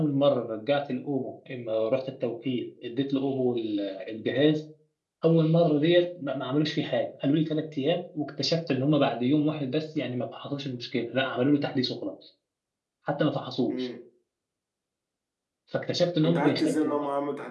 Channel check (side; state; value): both; identical; correlation 1.00